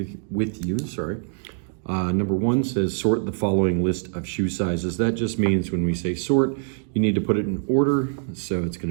with you. Number one says sort the following list of shoe sizes. That just means when we say sort, you need to put it in order. So it's going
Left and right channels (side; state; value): left; silent; 63 dB below the other